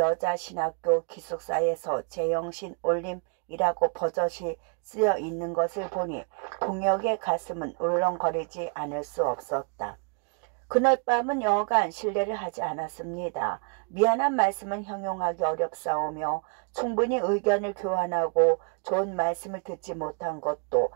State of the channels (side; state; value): left; quieter; 37.0 dB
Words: 기숙사에서 제영신 올림이라고 버젓이 쓰여 있는 것을 보니 동혁의 가슴은 울렁거리지 않을 수 없었다. 그날 밤은 여간 실례를 하지 않았습니다. 미안한 말씀은 형용하기 어렵사오며 충분히 의견을 교환하고 좋은 말씀을 듣지 못한 것도